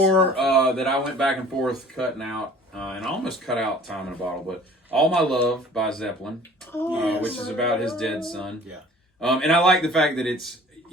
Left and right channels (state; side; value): normal; both; correlation 0.49